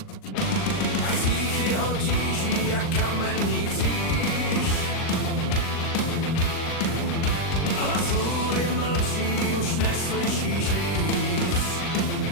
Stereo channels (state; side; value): late; right; 39 ms